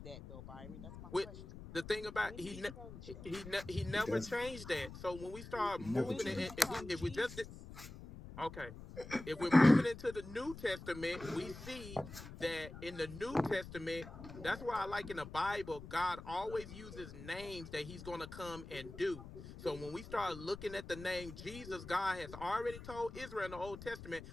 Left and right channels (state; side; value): noise; left; rumble, 13 dB below the sound